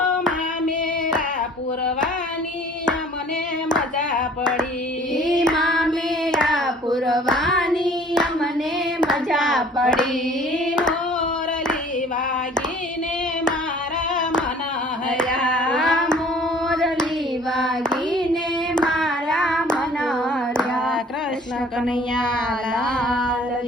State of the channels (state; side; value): normal; both; correlation 0.51